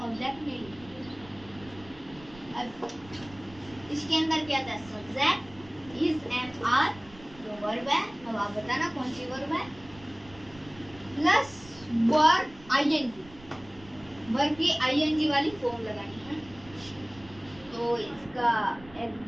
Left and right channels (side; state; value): right; noise; rumble, 21 dB below the sound